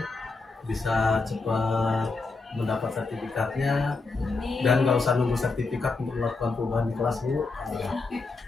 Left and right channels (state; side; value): quieter; right; 3.8 dB